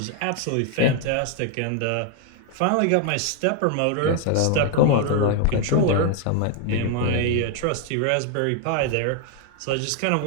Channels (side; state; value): both; different; correlation 0.00